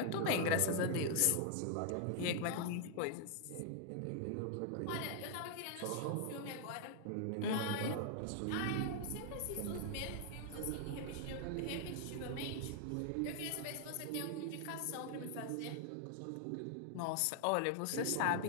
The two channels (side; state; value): both; different; correlation 0.00